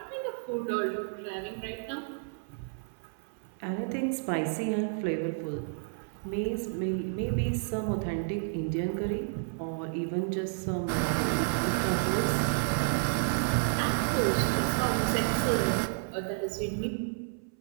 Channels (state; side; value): silent; left; 57 dB below the other